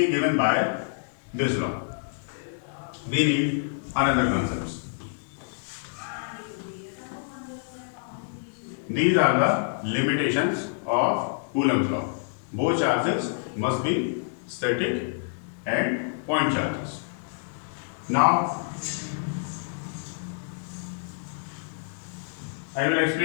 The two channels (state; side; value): silent; right; digital silence